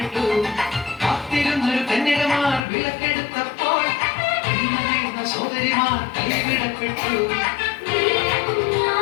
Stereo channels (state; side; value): drops out; right; at 2.6 s